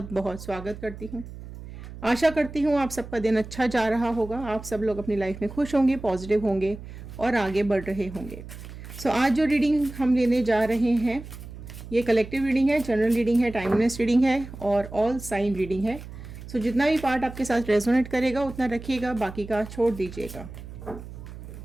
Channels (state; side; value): noise; right; hum, 13 dB below the sound